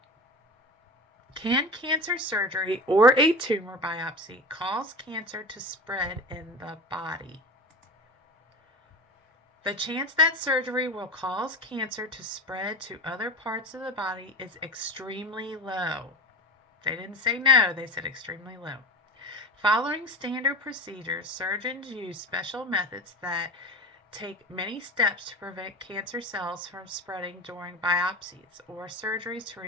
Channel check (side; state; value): both; normal; correlation 0.29